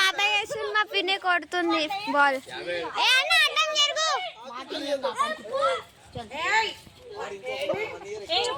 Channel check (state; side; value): identical; both; correlation 1.00